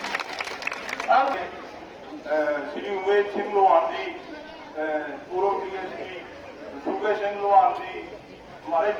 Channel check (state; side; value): identical; both; correlation 1.00